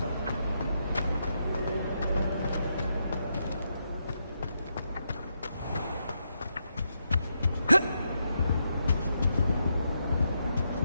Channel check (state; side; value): inverted; both; correlation -0.82